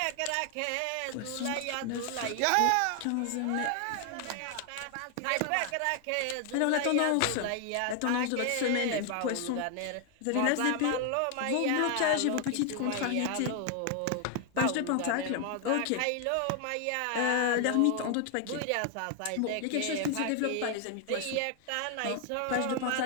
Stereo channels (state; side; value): different; both; correlation 0.00